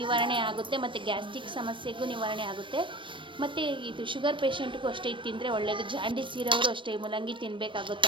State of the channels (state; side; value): late; left; 0.24 ms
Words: ಆಗುತ್ತೆ ಮತ್ತು ಗ್ಯಾಸ್ಟ್ರಿಕ್ ಸಮಸ್ಯೆಗೂ ನಿವಾರಣೆ ಆಗುತ್ತೆ. ಮತ್ತು ಇದು ಶುಗರ್ ಪೇಷಂಟ್ಗೂ ಅಷ್ಟೇ ಇದು ತಿಂದರೆ ಒಳ್ಳೆಯದು. ಜಾಂಡೀಸ್ ಇರೋರು ಅಷ್ಟೇ ಮೂಲಂಗಿ